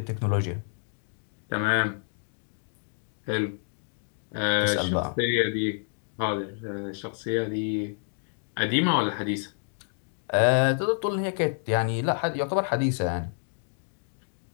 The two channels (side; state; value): right; silent; digital silence